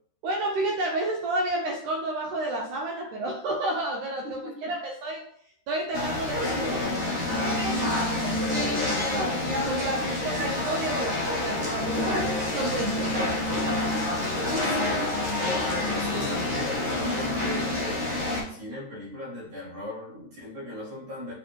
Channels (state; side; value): late; left; 13 ms